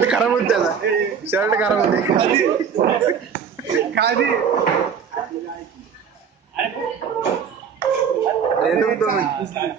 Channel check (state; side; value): quieter; left; 7.0 dB